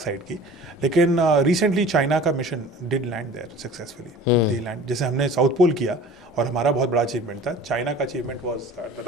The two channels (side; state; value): both; normal; correlation 0.44